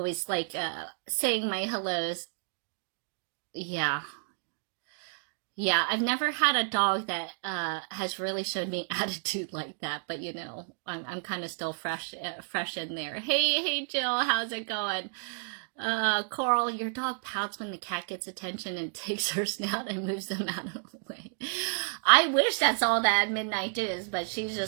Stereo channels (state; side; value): silent; left; 57 dB below the other